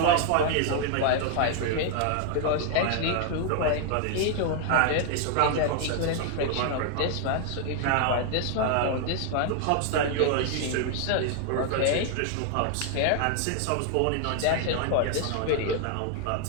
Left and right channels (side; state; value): both; different; correlation 0.00